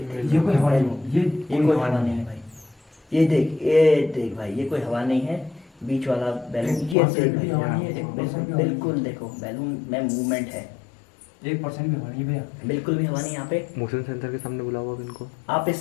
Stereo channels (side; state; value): right; drops out; at 7.0 s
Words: ये कोई हवा नहीं, ये कोई हवा नहीं है भाई। ये देख भाई, ये कोई हवा नहीं है। बीच वाला बैलून ये देख भाई, बिल्कुल देखो बैलून में मूवमेंट है। 1% भी हवा नहीं भैया, बिल्कुल भी हवा नहीं यहाँ पे। मोशन सेंसर के सामने बुलाओ अब इनको। आप